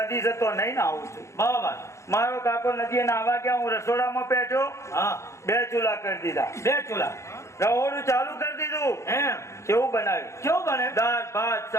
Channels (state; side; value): late; right; 0.14 ms